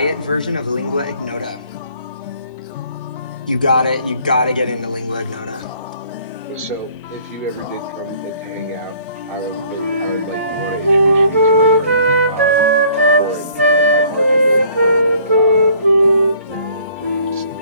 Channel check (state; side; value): inverted; both; correlation -0.58